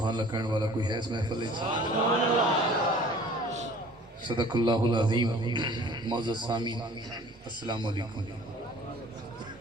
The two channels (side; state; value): both; normal; correlation 0.49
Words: अल्लाह कहने वाला कोई है इस महफिल में? सदक़ल्लाहुल अज़ीम। मौजूद सामीन अस्सलाम वालेकुम।